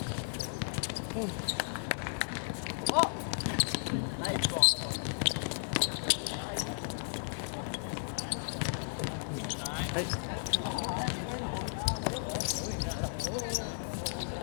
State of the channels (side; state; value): right; silent; digital silence